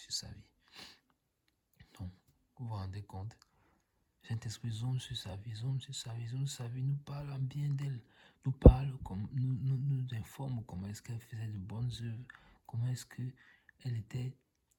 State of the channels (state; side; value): identical; both; correlation 1.00